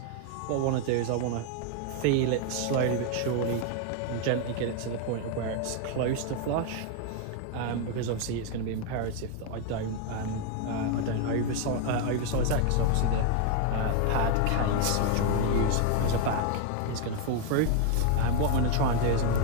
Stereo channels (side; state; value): both; different; correlation 0.00